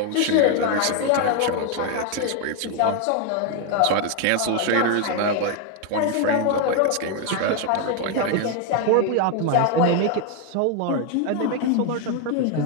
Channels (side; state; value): both; different; correlation 0.01